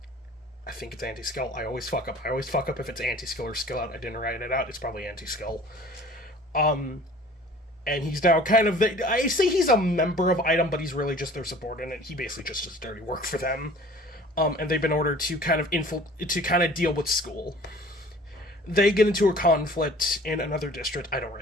I think it's Anti-Skill. I always fuck up if it's Anti-Skill or Skill Out. I didn't write it out. It's probably Anti-Skill. And he's now kind of I say he's a member of Item, but he's really just their subordinate. He basically just does dirty work for them. And they've been ordered to kind of deal with school. They get into a conflict in another district. I don't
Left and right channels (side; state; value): both; normal; correlation 0.48